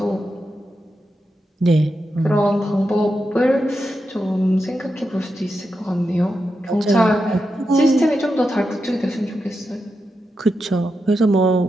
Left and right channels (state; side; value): normal; both; correlation 0.88